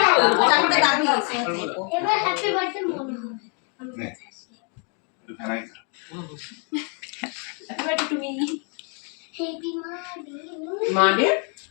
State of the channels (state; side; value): quieter; right; 39.0 dB